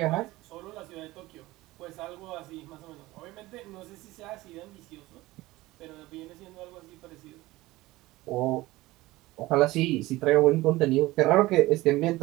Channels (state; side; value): quieter; left; 18.9 dB